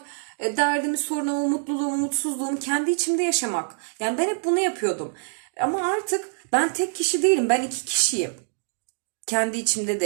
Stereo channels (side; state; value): left; silent; digital silence